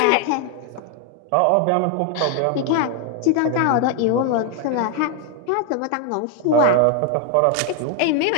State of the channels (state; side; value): different; both; correlation 0.01